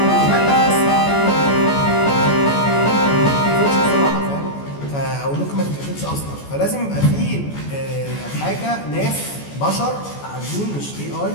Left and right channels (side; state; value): right; late; 14 ms